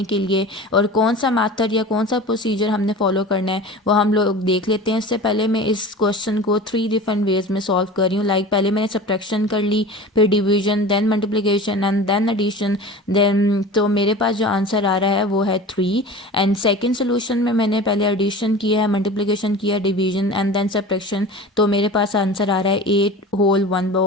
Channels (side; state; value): both; normal; correlation 0.36